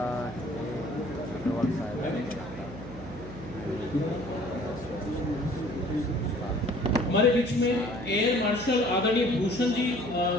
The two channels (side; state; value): right; noise; hum, 13 dB below the sound